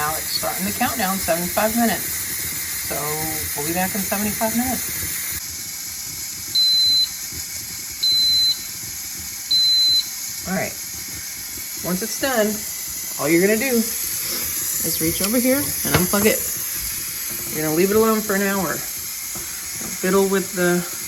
it's starting the countdown, 75 minutes. So we'll be back in 75 minutes. All right, once it's done, all you're gonna do is reach over here and unplug it. You're gonna leave it alone for an hour. Don't fiddle with the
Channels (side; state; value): both; identical; correlation 1.00